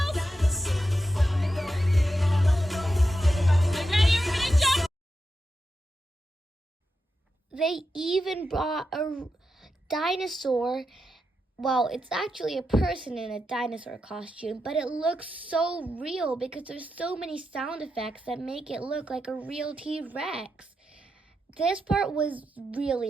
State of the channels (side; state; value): both; normal; correlation 0.87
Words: They even brought a dinosaur. Well, it's actually a person in a dinosaur costume, but it looks so real because there's so many sound effects that make it look like a real T-Rex. This part was